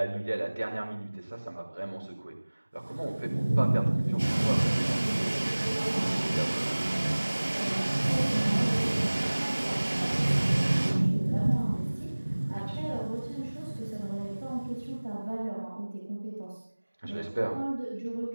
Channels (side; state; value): both; inverted; correlation -1.00